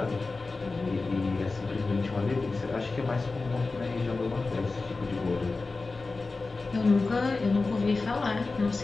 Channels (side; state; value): right; quieter; 3.7 dB